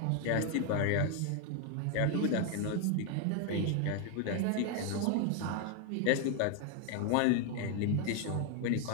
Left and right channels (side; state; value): both; different; correlation 0.01